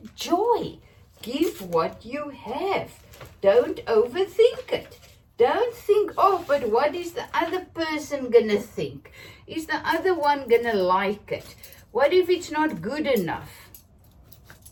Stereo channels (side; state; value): both; identical; correlation 1.00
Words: joy. Give what you have. Don't overthink it. Don't think, oh, but what is the other person gonna think? Is the other one gonna like it? What if it's not good enough?